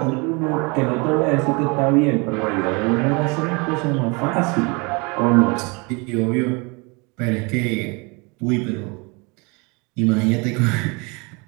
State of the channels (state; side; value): quieter; left; 29.4 dB